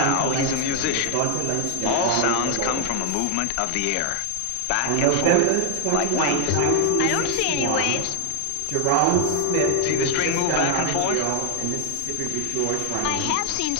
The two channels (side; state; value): both; different; correlation 0.00